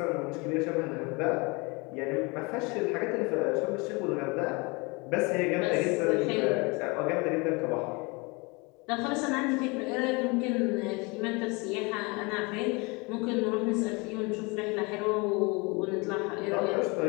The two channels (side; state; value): right; quieter; 27.7 dB